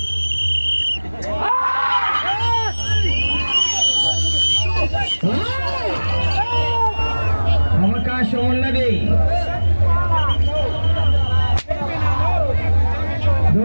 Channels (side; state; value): both; inverted; correlation -1.00